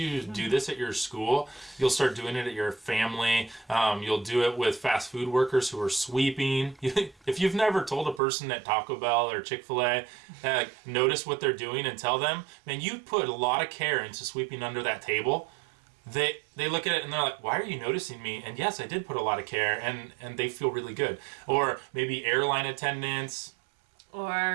do this at your school, you'll start doing it at your family. You'll do it with fast food workers who are sweeping. If you've never told a person at Taco Bell or Chick-fil-A, notice what they're doing and tell them, man, you put a lot of care into sweeping under that table. They look at it and they're like, why are you noticing me? And yes, I did put a lot of care, and they feel really good. Or maybe airline attendants.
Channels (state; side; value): drops out; left; at 8.2 s